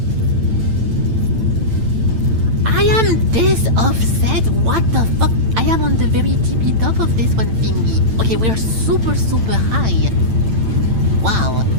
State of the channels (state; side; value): late; left; 8.9 ms